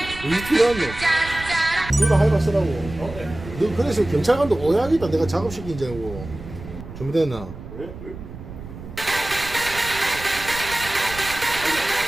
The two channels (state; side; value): noise; right; rumble, 13 dB below the sound